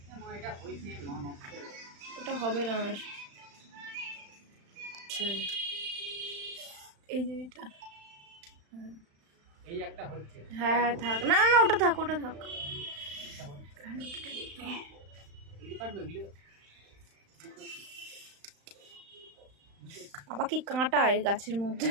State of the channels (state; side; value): late; left; 35 ms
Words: ওটা হবে না আর। এই যে এটা এই একটা হচ্ছে। হ্যাঁ থাক, না না ওটা থাক, ওটা থাক। বাবা কি কাঁটা এই গাছের মধ্যে।